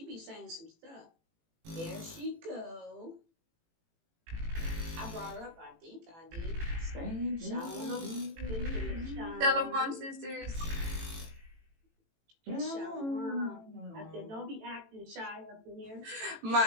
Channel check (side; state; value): left; late; 18 ms